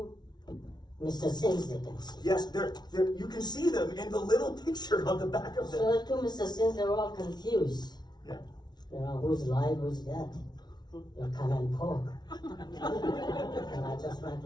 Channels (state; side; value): late; right; 0.20 ms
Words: Mr. Sims they can see. Yes, they're, you can see them in the little picture on the back of them. So the two Mr. Sims, they were all confused. Yeah. Who's live, who's dead. You come and poke. And I just went